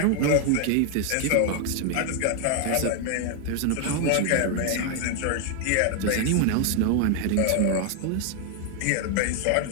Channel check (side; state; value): both; different; correlation 0.00